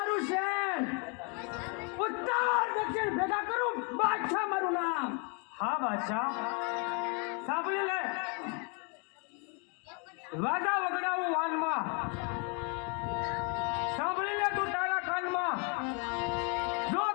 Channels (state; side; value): quieter; right; 36.1 dB